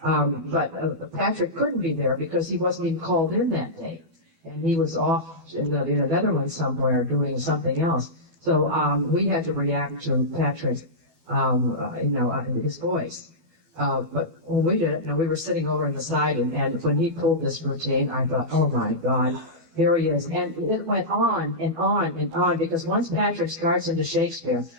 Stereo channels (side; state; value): left; late; 12 ms